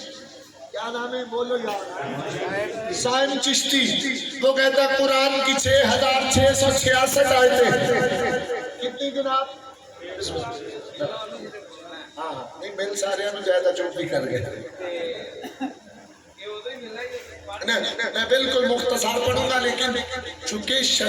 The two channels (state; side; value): identical; both; correlation 1.00